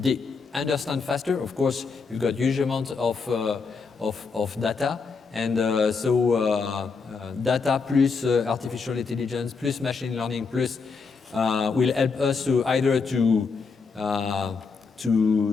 Understand faster, of course, you've got huge amounts of data, and data plus artificial intelligence plus machine learning plus will help us to either to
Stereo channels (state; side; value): quieter; right; 4.9 dB